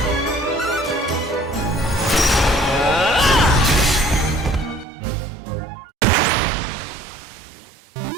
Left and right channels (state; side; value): drops out; left; at 4.9 s